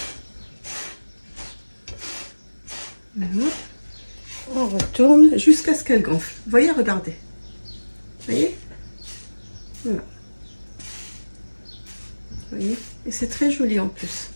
Voilà. On retourne jusqu'à ce qu'elle gonfle. Vous voyez, regardez. Vous voyez? Voilà. Vous voyez? Et c'est très joli en plus.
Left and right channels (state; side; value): inverted; both; correlation -1.00